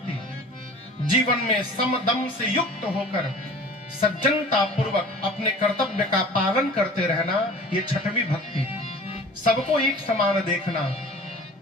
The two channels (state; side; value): normal; both; correlation 0.43